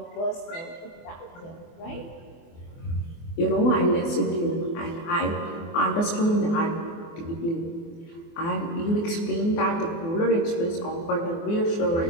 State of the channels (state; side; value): late; right; 24 ms